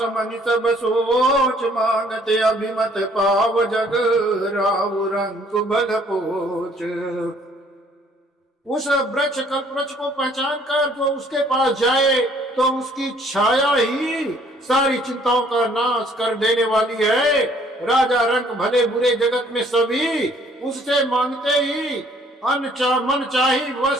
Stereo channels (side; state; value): both; normal; correlation 0.60